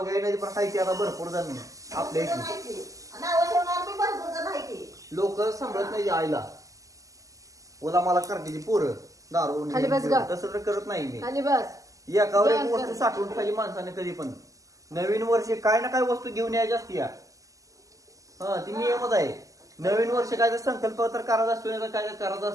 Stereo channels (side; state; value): left; late; 0.16 ms